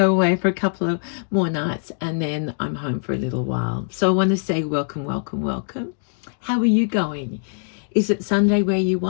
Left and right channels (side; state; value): right; silent; digital silence